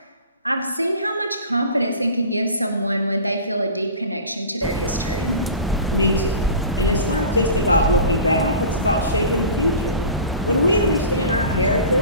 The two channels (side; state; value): both; inverted; correlation -0.37